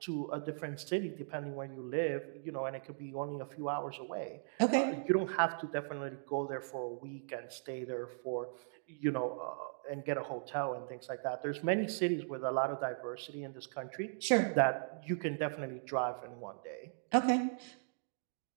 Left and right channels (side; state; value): left; silent; digital silence